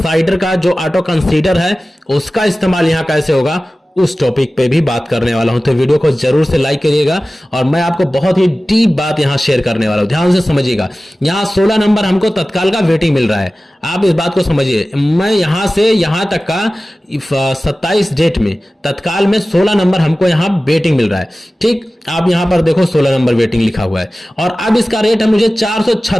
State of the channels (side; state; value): both; normal; correlation 0.96